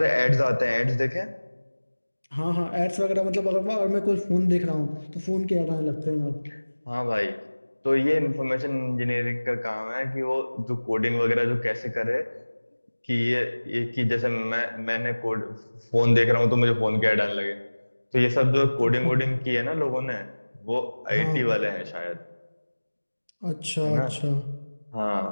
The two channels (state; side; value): inverted; both; correlation -1.00